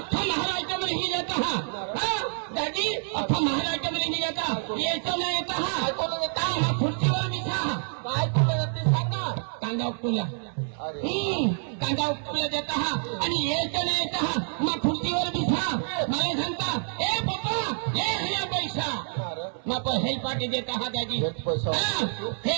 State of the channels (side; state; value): left; silent; 60 dB below the other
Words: महाराष्ट्र में नहीं जाता हाँ दादी अख्खा महाराष्ट्र में नहीं जाता ये तो नहीं येता काय कोण येता हा खुर्चीवर बिछा काय कोण येते सांगा कांदा उपटूला अरे कांदा उपटूला देता हा आणि यायचं नाही येता हा मग खुर्चीवर बिछा मला सांगता ए पप्पा ये है पैसा मग हेल पार्टी देता हा दादी